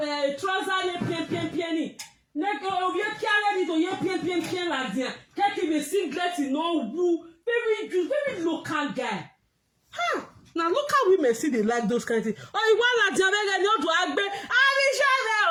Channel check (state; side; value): identical; both; correlation 1.00